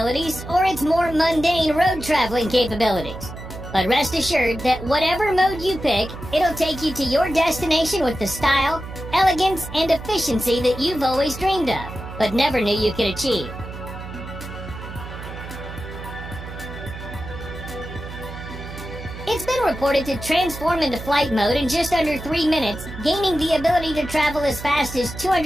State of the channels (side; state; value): right; noise; hum, 11 dB below the sound